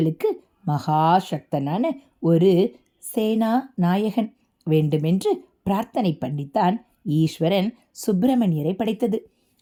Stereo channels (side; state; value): both; identical; correlation 1.00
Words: மகாசக்தனான ஒரு சேனா நாயகன் வேண்டுமென்று பிரார்த்தனை பண்ணித்தான் ஈஸ்வரன் சுப்பிரமணியரை படைத்தது.